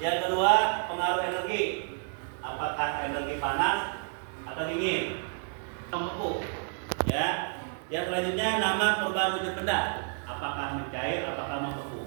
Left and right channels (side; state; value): left; silent; 58 dB below the other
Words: Yang kedua, pengaruh energi. Apakah energi panas atau dingin? Membeku. Ya. Yang selanjutnya, nama perubahan wujud benda. Apakah mencair, apakah